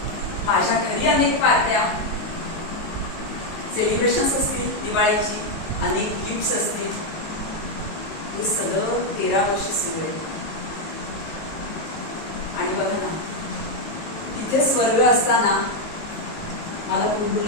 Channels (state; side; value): late; right; 19 ms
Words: माझ्या घरी अनेक पार्ट्या, सेलिब्रेशन्स असतील, दिवाळीची अनेक गिफ्ट्स असतील. हे सगळं 13 वर्ष सुरू आहे. आणि बघा ना, तिथे स्वर्ग असताना मला कुंडू